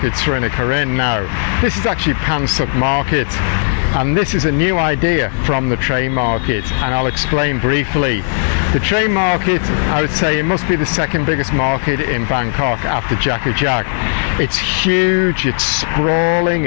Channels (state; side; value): silent; right; 69 dB below the other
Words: Srinakarin now. This is actually Punsuk Market. And this is a new idea from the Train Market, and I'll explain briefly. The Train Market, I would say, it must be the second biggest market in Bangkok after Jack. It's huge, it's sprawling,